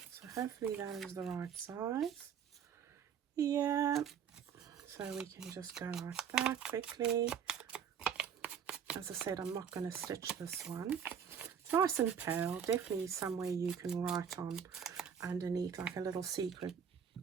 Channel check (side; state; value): left; quieter; 7.7 dB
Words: So hopefully that is the right size. Yeah. So we can just go like that quickly. As I said, I'm not going to stitch this one. It's nice and pale. Definitely somewhere you can write on underneath, like a little secret